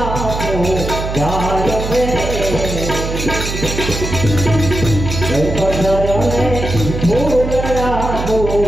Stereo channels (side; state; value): right; noise; hum, 5 dB below the sound